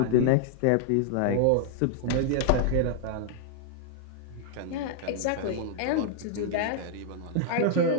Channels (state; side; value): different; both; correlation -0.01